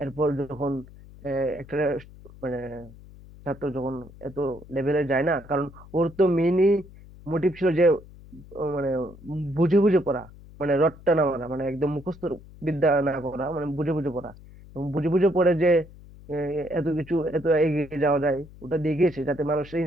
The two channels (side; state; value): left; noise; hum, 20 dB below the sound